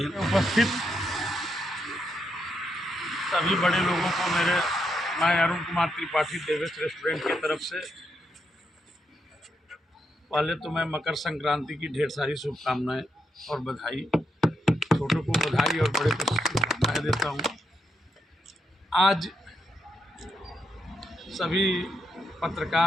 उपस्थित सभी बड़े लोगों को मैं अरुण कुमार त्रिपाठी देवेश रेस्टोरेंट की तरफ से पहले तो मैं मकर संक्रांति की ढेर सारी शुभकामनाएं और बधाई, छोटों को बधाई और बड़े को शुभकामनाएं देता हूं। आज सभी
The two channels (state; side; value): normal; both; correlation 0.80